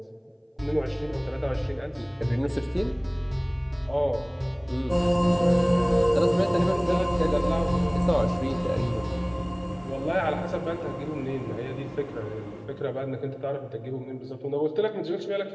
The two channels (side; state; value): both; identical; correlation 1.00